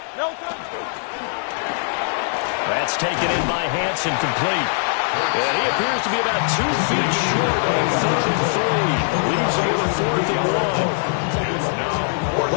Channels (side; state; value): right; silent; 65 dB below the other